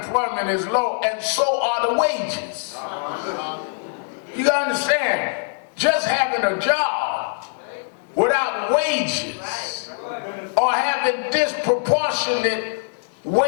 is low, and so are the wages. You gotta understand, just having a job without wages, or having disproportionate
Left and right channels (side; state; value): right; silent; digital silence